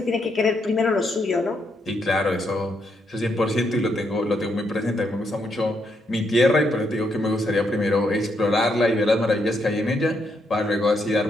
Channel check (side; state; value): both; normal; correlation 0.77